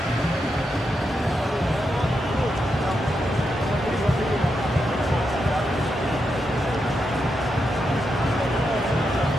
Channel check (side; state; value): both; normal; correlation 0.84